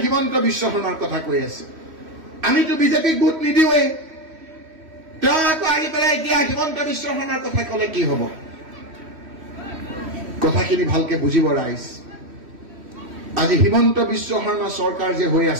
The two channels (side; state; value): left; late; 3.1 ms